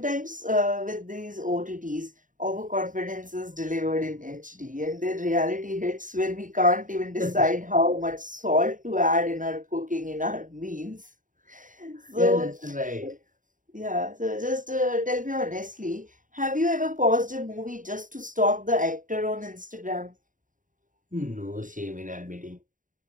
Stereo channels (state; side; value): late; left; 0.38 ms